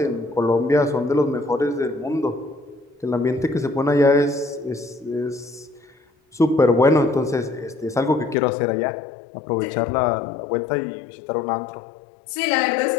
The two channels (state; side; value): drops out; right; at 8.3 s